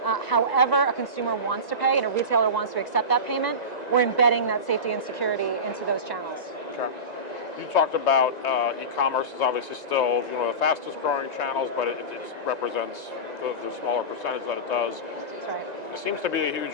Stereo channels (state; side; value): late; right; 1.9 ms